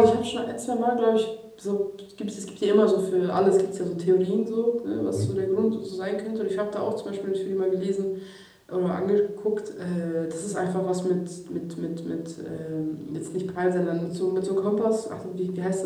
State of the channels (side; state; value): both; identical; correlation 1.00